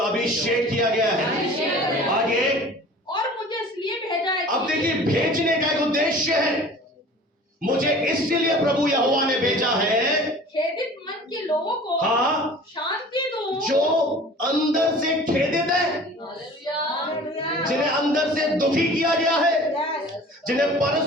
अभिषेक किया गया है। आगे, और मुझे इसलिए भेजा है। अब देखिए, भेजने का एक उद्देश्य है। मुझे इसलिए प्रभु यहोवा ने भेजा है, खेदित मन के लोगों को हाँ, शांति दूं, जो अंदर से खेदित है, जिन्हें अंदर से दुखी किया गया है, जिन्हें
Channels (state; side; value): normal; both; correlation 0.44